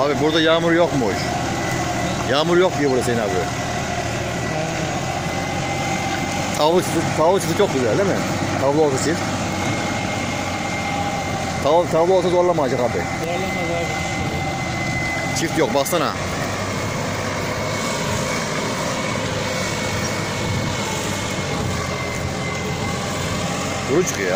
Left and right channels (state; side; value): identical; both; correlation 1.00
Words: Abi burada yağmur yokmuş. Yağmur yok diyor burada Hüseyin abi. Tavla çiftliği çok güzel değil mi? Tavla olsa çift. Tavla olsa zorlamayacak abi. Zorlamaz abi. Çift yok baksana. Kuru çıkıyor